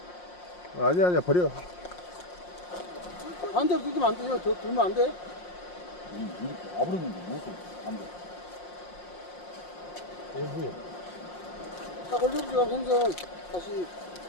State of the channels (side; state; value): right; late; 5.6 ms